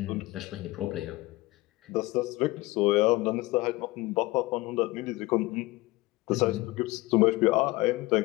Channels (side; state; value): right; quieter; 20.5 dB